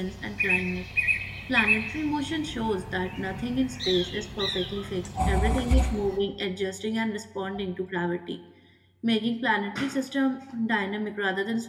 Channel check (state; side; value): identical; both; correlation 1.00